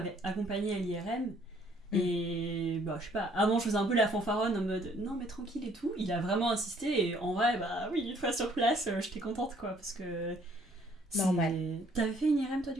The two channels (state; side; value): normal; both; correlation 0.62